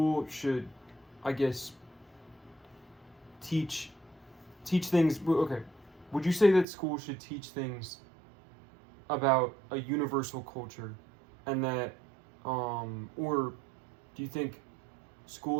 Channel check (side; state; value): left; drops out; at 6.7 s